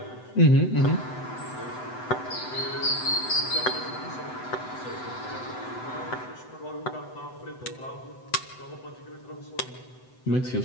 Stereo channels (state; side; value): late; right; 7.9 ms